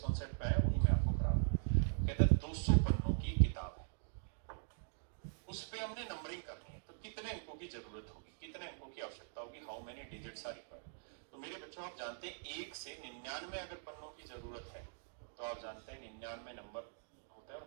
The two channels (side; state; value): left; silent; digital silence